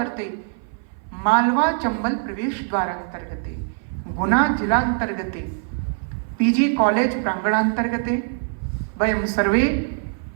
मालवा चंबल प्रवेश द्वारांतर्गते गुना जिलांतर्गते पीजी कॉलेज प्रांगणांतर्गते वयम सर्वे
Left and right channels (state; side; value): silent; left; 57 dB below the other